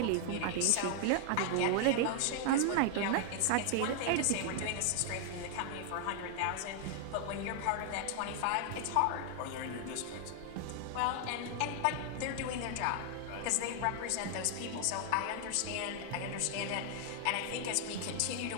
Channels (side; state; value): both; different; correlation 0.00